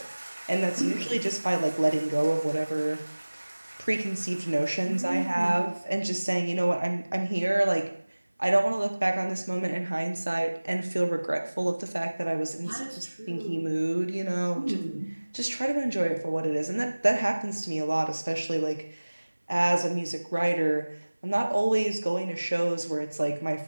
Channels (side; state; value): both; inverted; correlation -1.00